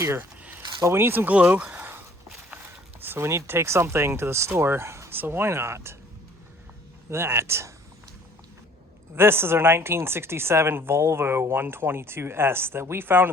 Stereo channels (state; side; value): normal; both; correlation 0.56